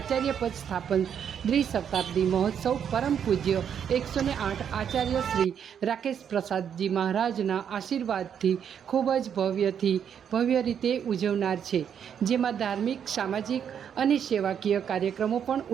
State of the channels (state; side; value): quieter; left; 8.3 dB